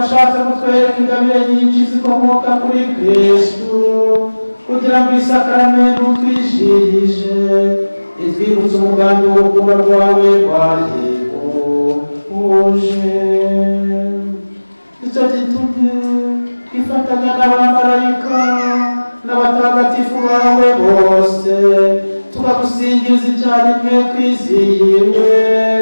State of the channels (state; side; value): inverted; both; correlation -1.00